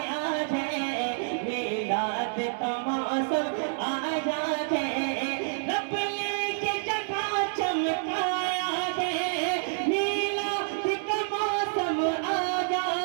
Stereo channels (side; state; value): left; silent; 59 dB below the other